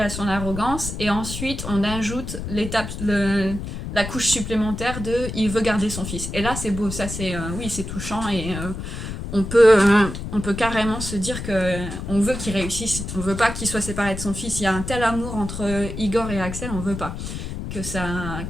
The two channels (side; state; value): left; noise; rumble, 7 dB below the sound